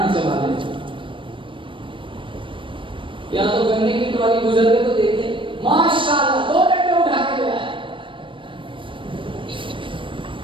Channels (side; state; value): left; late; 0.25 ms